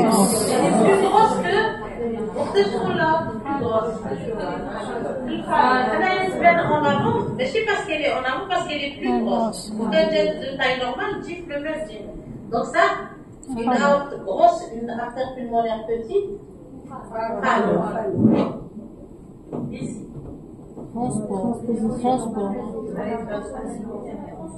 grosse que. Pour ce là, plus grosse. Elle est en avant, mais c'est parce qu'elle est en avant, parce qu'elle est plus grosse. Pour qu'elle est de taille normale, type le même type. Donc ça, une aorte grosse, une artère pulmonaire petite. Alors. Ici. Transport.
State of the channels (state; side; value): identical; both; correlation 1.00